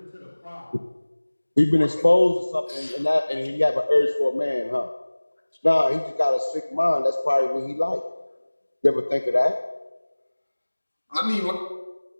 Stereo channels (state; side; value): inverted; both; correlation -1.00